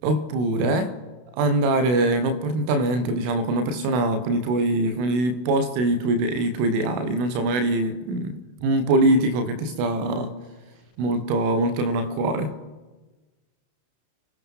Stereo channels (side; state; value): left; late; 32 ms